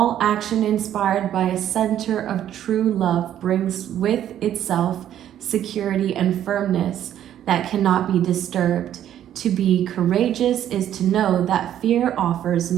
action inspired by a center of true love brings with itself security and firmness that cannot be disturbed. To be courageous is to know that fear offers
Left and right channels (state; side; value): quieter; left; 11.0 dB